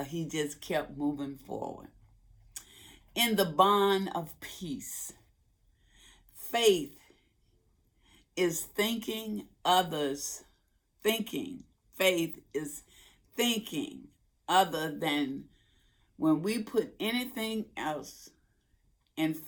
he just kept moving forward? In the bond of peace, faith is thinking others, thinking. Faith is thinking other than when we put anything else in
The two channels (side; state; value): both; identical; correlation 1.00